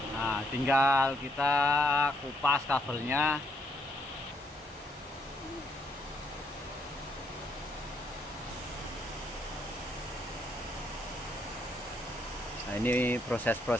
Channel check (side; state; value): both; normal; correlation 0.73